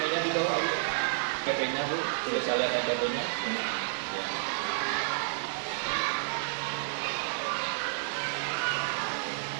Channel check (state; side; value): silent; left; digital silence